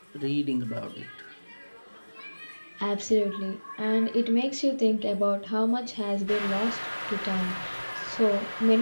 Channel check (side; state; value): both; inverted; correlation -1.00